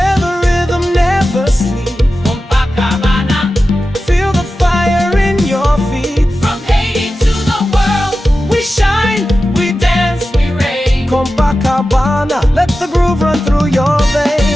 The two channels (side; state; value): both; normal; correlation 0.93